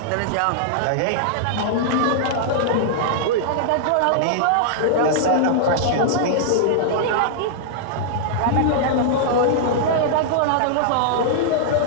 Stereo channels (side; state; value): both; different; correlation -0.02